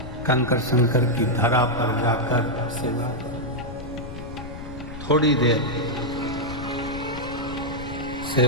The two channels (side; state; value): left; noise; rumble, 11 dB below the sound